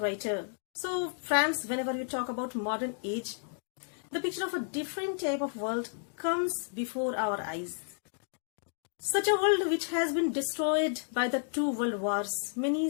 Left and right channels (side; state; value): right; silent; digital silence